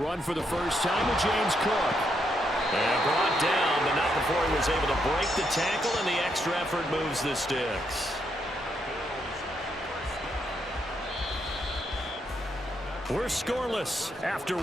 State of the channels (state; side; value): normal; both; correlation 0.78